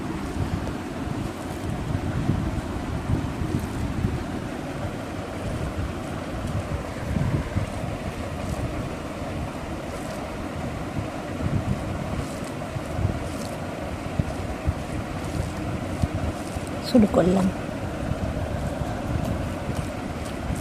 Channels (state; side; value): identical; both; correlation 1.00